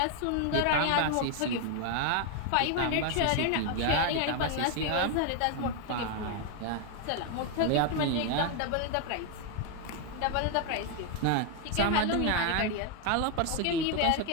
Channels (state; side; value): different; both; correlation 0.01